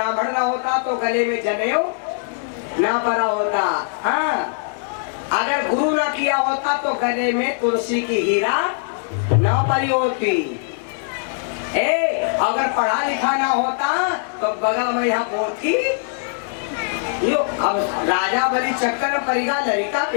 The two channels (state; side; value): silent; right; 65 dB below the other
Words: ना होता तो गले में जनेऊ ना पड़ा होता। हाँ अगर गुरु ना किया होता तो गले में तुलसी की हीरा ना पड़ी होती। अगर पढ़ा लिखा ना होता तो बगल में यहाँ पोथी यो। अब राजा बलि चक्कर में परिगा लड़का